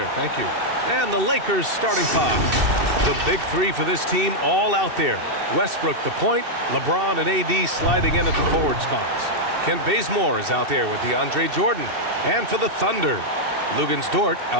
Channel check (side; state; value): left; late; 2.7 ms